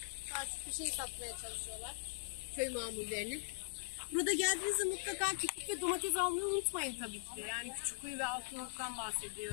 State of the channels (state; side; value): silent; right; digital silence